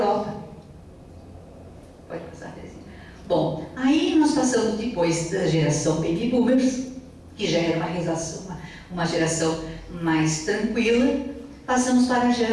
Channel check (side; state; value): both; identical; correlation 1.00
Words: Pode passar, Terezinha. Bom, aí nós passamos depois da geração Baby Boomers, que já era uma geração mais tranquila, passamos para a